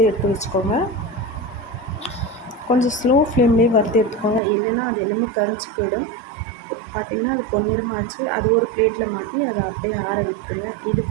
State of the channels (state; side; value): drops out; left; at 4.4 s